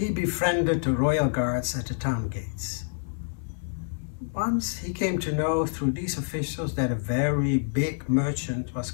befriended the royal guards at the town gates. Once he came to know through these officials that a very big merchant was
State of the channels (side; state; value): right; silent; digital silence